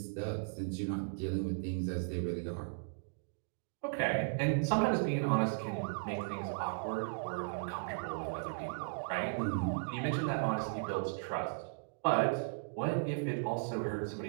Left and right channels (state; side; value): silent; left; digital silence